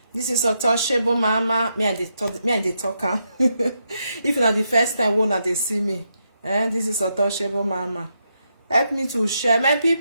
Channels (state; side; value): inverted; both; correlation -0.82